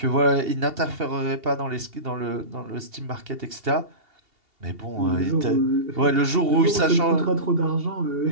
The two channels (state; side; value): late; left; 2.8 ms